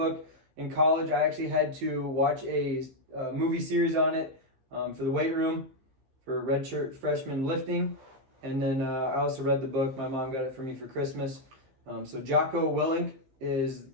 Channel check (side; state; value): left; late; 15 ms